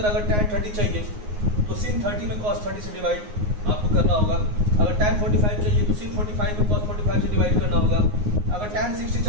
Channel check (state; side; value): late; left; 9.6 ms